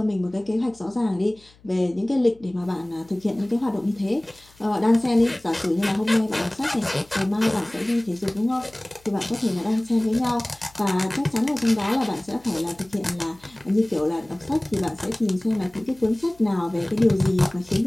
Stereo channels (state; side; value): noise; left; hum, 28 dB below the sound